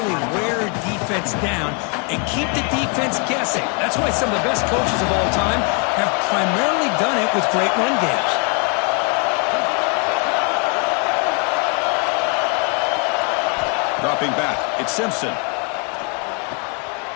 wear a defense down and keep the defense guessing. That's why some of the best coaches of all time have primarily done it with great run games. Dropping back. It's Simpson.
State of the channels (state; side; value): quieter; right; 35.8 dB